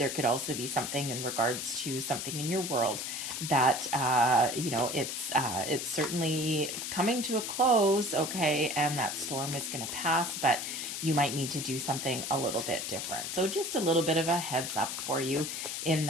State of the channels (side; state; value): left; noise; hiss, 4 dB below the sound